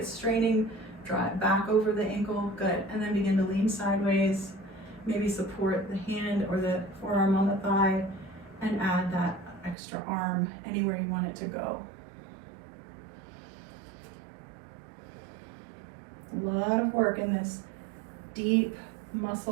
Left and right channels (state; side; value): drops out; left; at 9.8 s